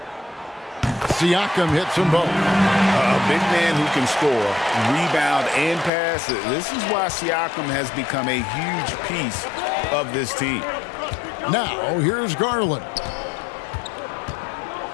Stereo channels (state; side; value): drops out; right; at 5.9 s